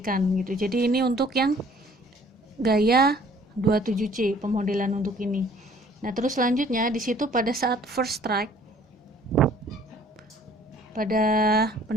gitu. Jadi ini untuk yang gaya 27C pemodelan untuk ini. Nah, terus selanjutnya di situ pada saat first strike, pada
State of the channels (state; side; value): normal; both; correlation 0.56